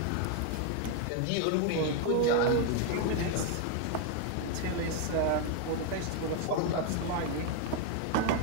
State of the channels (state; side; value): different; both; correlation 0.00